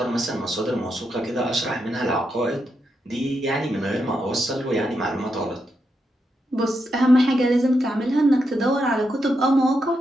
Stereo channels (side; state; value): both; normal; correlation 0.83